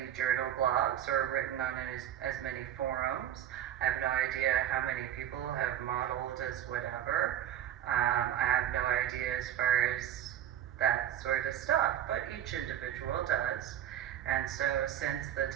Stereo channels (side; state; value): left; quieter; 11.0 dB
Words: journal blogs or written on as many forums. I have no idea how many people have modeled as whatever. I have no idea as far as that sort of stuff, but each individual does. And so since the